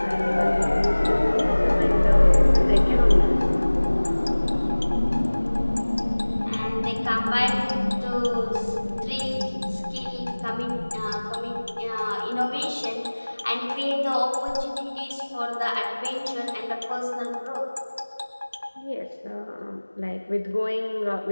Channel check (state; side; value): inverted; both; correlation -1.00